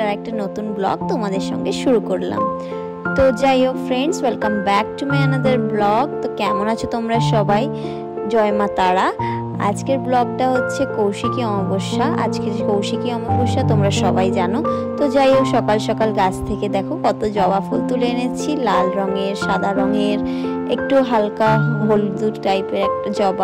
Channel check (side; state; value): both; identical; correlation 1.00